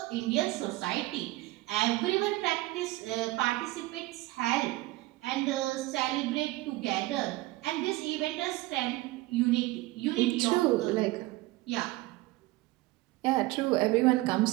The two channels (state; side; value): quieter; left; 19.2 dB